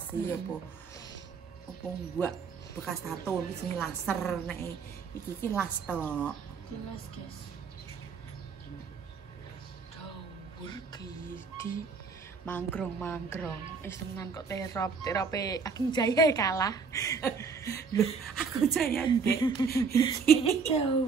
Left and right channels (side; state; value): left; quieter; 5.3 dB